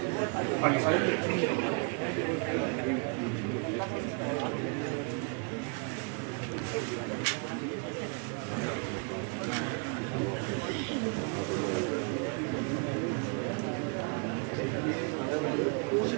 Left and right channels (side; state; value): left; quieter; 37.3 dB